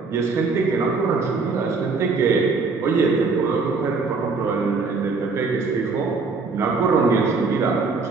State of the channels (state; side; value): quieter; left; 4.3 dB